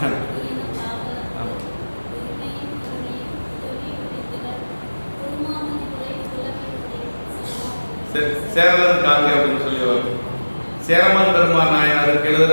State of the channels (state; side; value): inverted; both; correlation -1.00